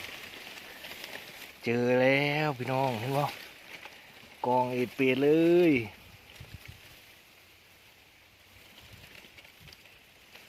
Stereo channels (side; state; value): both; identical; correlation 1.00